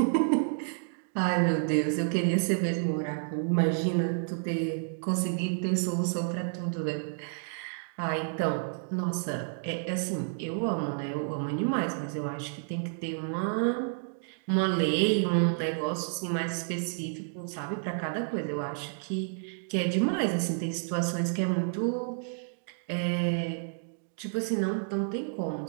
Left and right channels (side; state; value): left; silent; digital silence